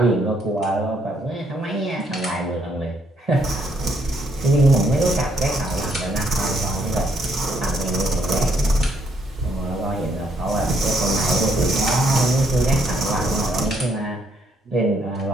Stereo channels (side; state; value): both; normal; correlation 0.71